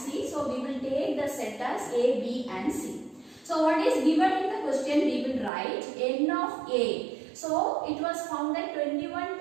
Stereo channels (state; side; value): drops out; left; at 5.5 s